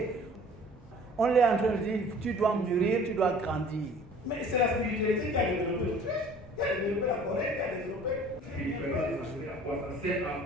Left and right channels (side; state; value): both; normal; correlation 0.49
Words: On est en train de dire, tu dois mûrir, tu dois grandir. Mais c'est la spiritualité qui a développé l'Autriche, qui a développé la Corée, qui a développé... C'est à